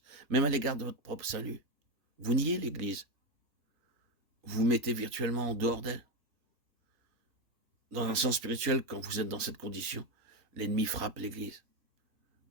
même à l'égard de votre propre salut? Vous niez l'Église. Vous vous mettez virtuellement en dehors d'elle. Dans un sens spirituel, quand vous êtes dans cette condition, l'ennemi frappe l'Église.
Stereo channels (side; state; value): left; late; 3.9 ms